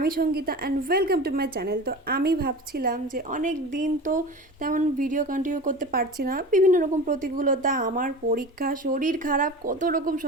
Sangeeta and welcome to my channel. তো আমি ভাবছিলাম যে অনেক দিন তো তেমন ভিডিও কন্টিনিউ করতে পারছি না, বিভিন্ন রকম প্রতিকূলতা, আমার পরীক্ষা, শরীর খারাপ, কত রকম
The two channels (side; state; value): both; normal; correlation 0.33